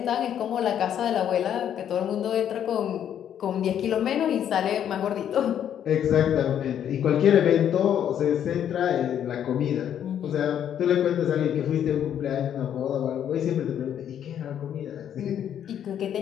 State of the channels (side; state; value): right; quieter; 9.7 dB